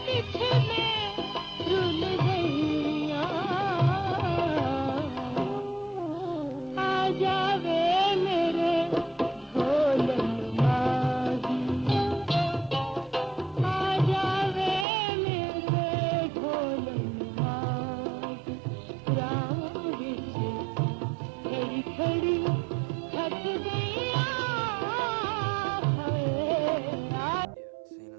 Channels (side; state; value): left; drops out; at 14.9 s